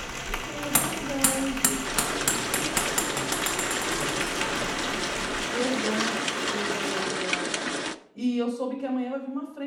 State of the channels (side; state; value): both; identical; correlation 1.00